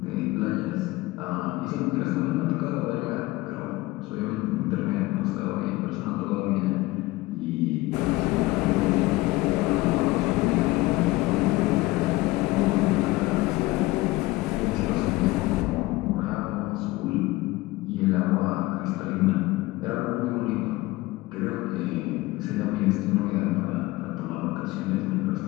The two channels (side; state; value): right; quieter; 19.8 dB